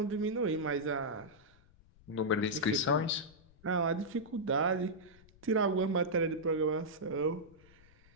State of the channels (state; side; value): noise; left; rumble, 27 dB below the sound